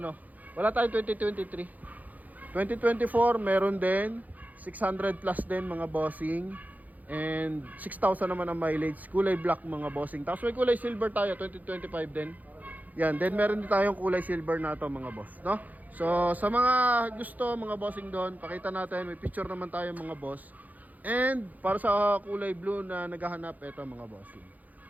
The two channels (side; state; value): left; late; 0.080 ms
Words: Wala tayong 2023. 2024 meron din 600 plus din mga bossing. And 6,000 naman ang mileage. Kulay black mga bossing. Tapos may kulay silver tayo, 2025 din. Yan, then meron din tayong kulay silver na to mga boss, no? So sa mga gusto mga bossing doon, pakita natin, may picture naman tayo mga boss. And para sa kulay blue na naghahanap, ito mga bossing.